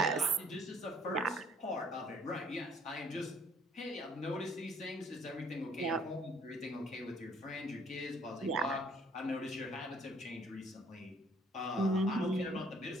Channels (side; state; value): both; normal; correlation 0.60